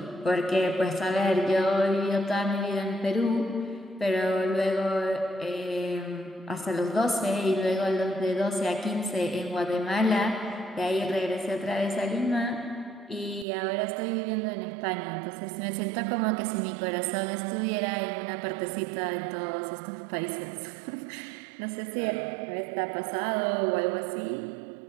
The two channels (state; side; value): drops out; left; at 13.5 s